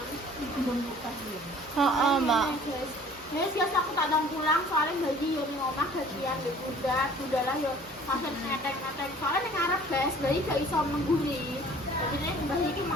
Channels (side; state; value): both; normal; correlation 0.51